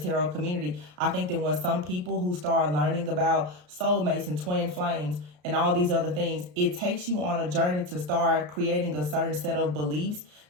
community. I think that when some people who start learning about soulmates and twin flames and all these other things, it takes you on a journey to start creating a certain set of beliefs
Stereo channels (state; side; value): late; left; 33 ms